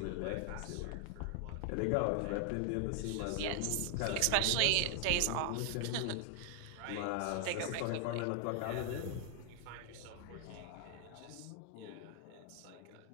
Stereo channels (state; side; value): different; both; correlation 0.00